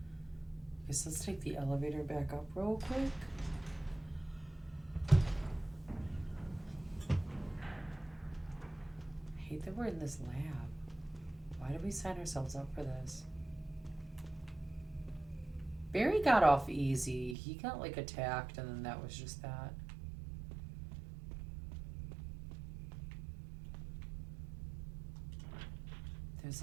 Guess let's take the elevator back up real quick. I hate that we're in this lab. Why did we sign ourselves up for this? Barry got off easy. He got like attacked and then that was just that. There's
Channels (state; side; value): drops out; left; at 17.4 s